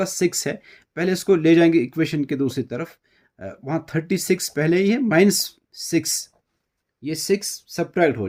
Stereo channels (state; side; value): identical; both; correlation 1.00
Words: 6 है, पहले इसको ले जाएंगे इक्वेशन के दूसरी तरफ, वहाँ 36 पहले ही है, माइनस 6, ये 6 सब्ट्रैक्ट